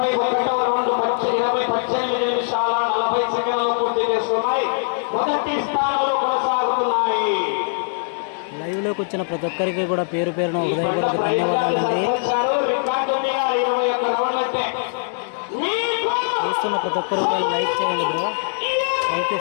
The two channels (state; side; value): silent; right; digital silence